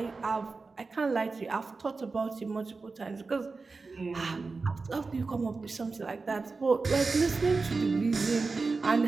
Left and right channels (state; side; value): quieter; left; 4.0 dB